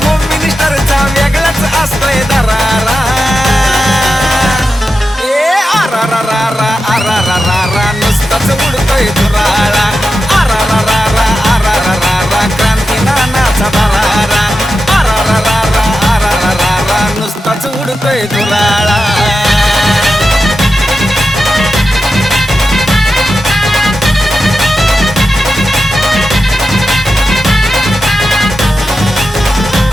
होम मिनिस्टरचा वेगळाच असतोय दरारा. आरा रा रा रा आरा रा रा रा नुसताच उडतोय धुराळा. आरा रा रा रा आरा रा रा रा क्रांती नानाचा दरारा. आरा रा रा रा आरा रा रा रा नुसताच उडतोय धुराळा.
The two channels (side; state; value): both; normal; correlation 0.90